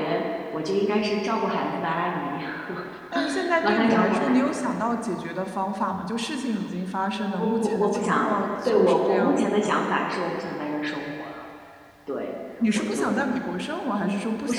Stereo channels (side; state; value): both; identical; correlation 1.00